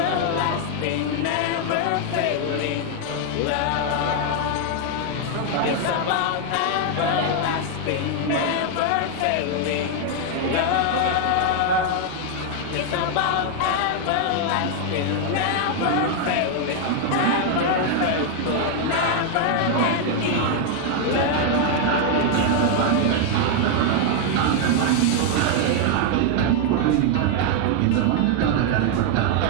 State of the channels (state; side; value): different; both; correlation 0.00